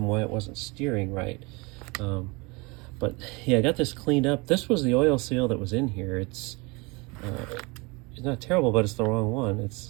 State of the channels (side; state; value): left; quieter; 27.0 dB